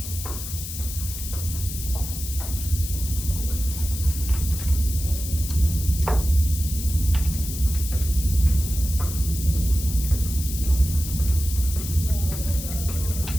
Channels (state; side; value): noise; left; hiss, 8 dB below the sound